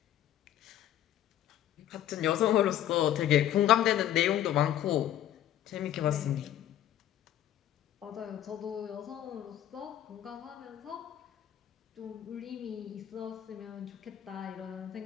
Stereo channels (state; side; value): quieter; right; 11.6 dB